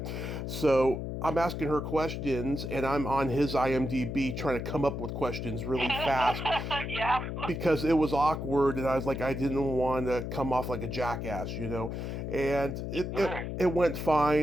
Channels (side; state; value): left; noise; hum, 5 dB below the sound